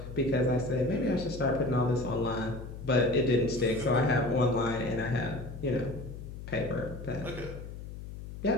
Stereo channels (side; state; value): left; noise; hum, 11 dB below the sound